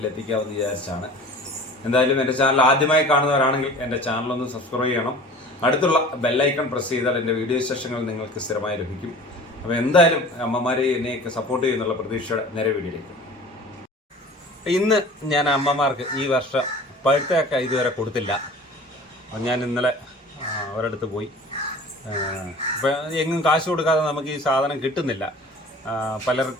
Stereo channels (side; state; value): both; normal; correlation 0.42